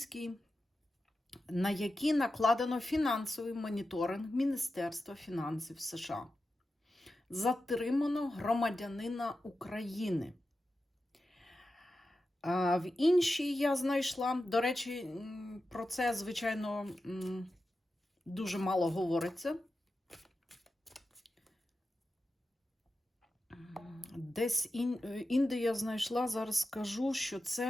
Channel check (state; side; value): normal; both; correlation 0.91